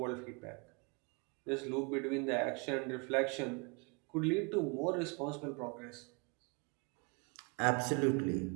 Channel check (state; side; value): quieter; left; 32.8 dB